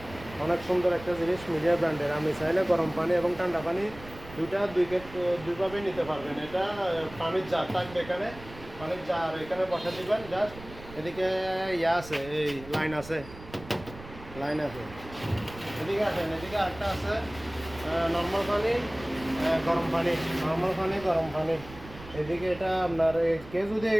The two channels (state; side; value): noise; right; rumble, 17 dB below the sound